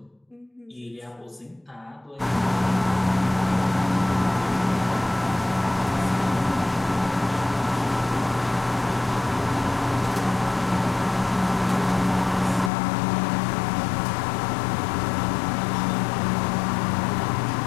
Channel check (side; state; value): right; drops out; at 12.7 s